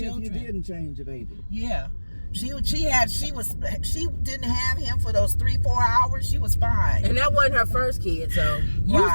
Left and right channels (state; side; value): inverted; both; correlation -1.00